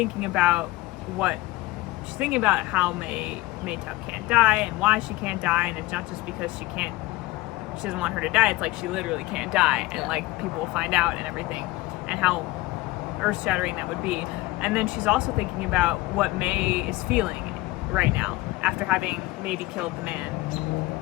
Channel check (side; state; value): right; quieter; 19.6 dB